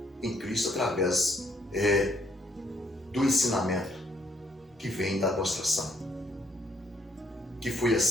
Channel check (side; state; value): both; normal; correlation 0.70